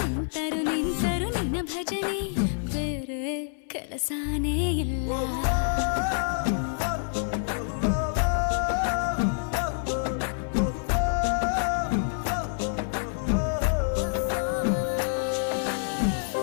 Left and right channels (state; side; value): silent; right; 60 dB below the other